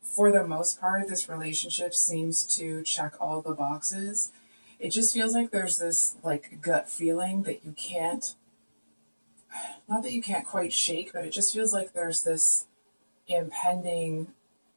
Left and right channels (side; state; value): both; inverted; correlation -1.00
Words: for the most part, this relationship seems to check all the boxes. It just feels like there's this like gut feeling that you can't, not that you can't quite shake, but it just feels like there's this impending